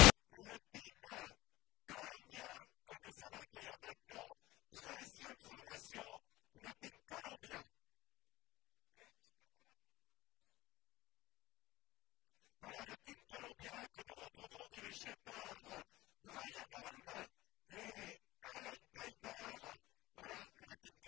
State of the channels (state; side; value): quieter; right; 18.3 dB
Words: le team Columbia que nous allons accueillir maintenant. 13e formation, le team Columbia. Et je peux avoir un peu de retour. Voilà le team Columbia que nous retrouvons dirigé par Brian Holm et Alan Piper. Voilà le team